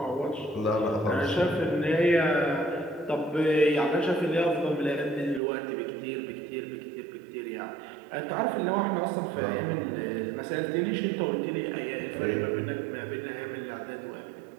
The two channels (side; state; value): left; drops out; at 5.4 s